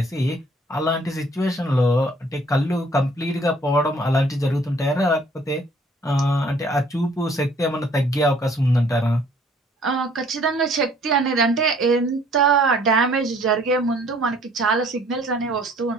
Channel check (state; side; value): normal; both; correlation 0.58